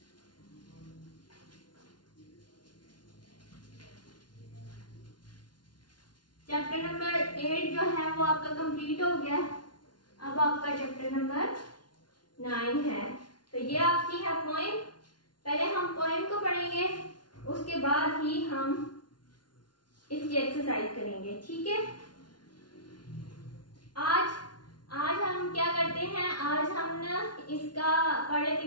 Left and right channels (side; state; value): right; late; 0.70 ms